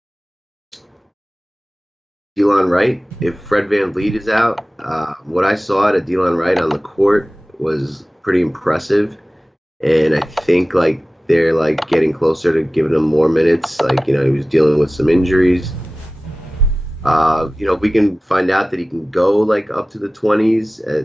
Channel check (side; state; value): both; normal; correlation 0.97